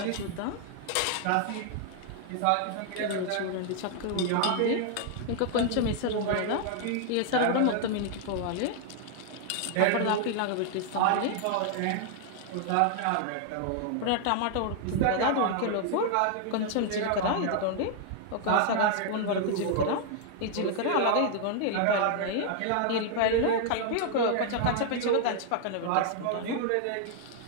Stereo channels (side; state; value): both; different; correlation 0.00